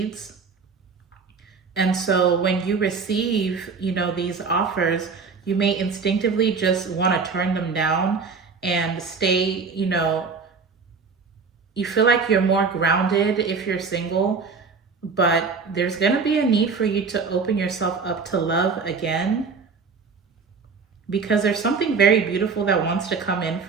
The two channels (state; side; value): quieter; left; 5.0 dB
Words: And so when you receive, these offers, you may instinctively just want to turn them down and stay, you feel like you're more grounded if you're single, but there's going to be a need for you to open yourself up to love again, because there's something very beautiful that wants to come in